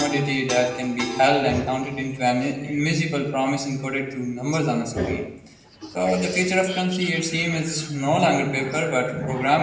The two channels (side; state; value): both; identical; correlation 1.00